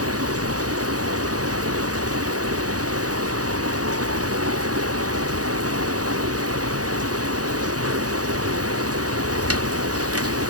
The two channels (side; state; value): left; late; 0.67 ms